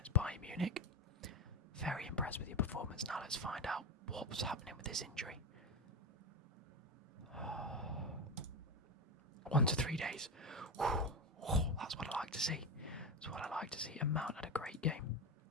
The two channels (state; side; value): normal; both; correlation 0.15